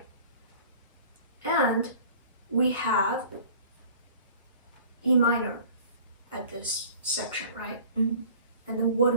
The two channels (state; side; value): inverted; both; correlation -0.47